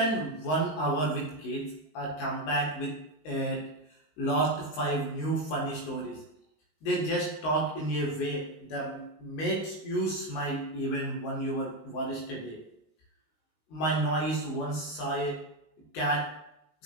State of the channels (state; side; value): late; right; 19 ms